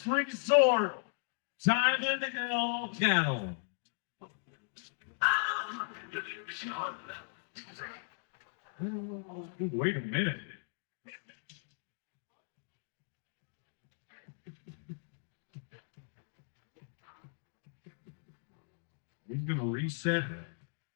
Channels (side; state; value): right; silent; digital silence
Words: resort. Diamond Hill Cattle. Wait a minute. He's gonna reset